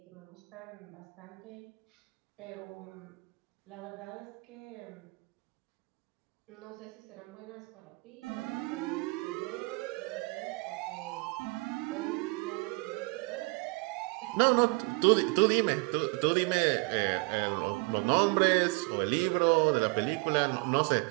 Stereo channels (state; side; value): quieter; left; 28.6 dB